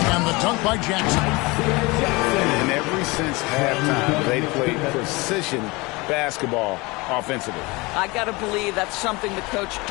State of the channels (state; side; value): quieter; right; 24.4 dB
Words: And the dunk by Jackson. And ever since halftime, they played precision basketball offensively. I got to believe that's something the coach